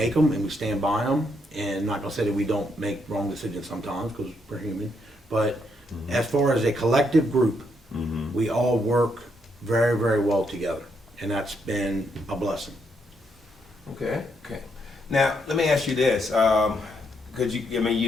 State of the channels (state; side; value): normal; both; correlation 0.76